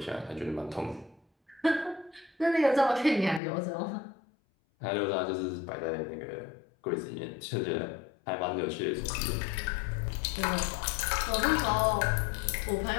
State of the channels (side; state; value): right; drops out; at 3.4 s